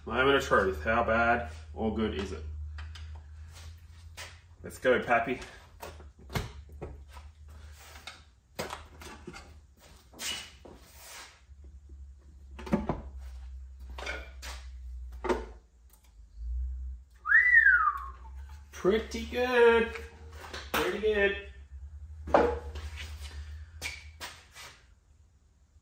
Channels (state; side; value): identical; both; correlation 1.00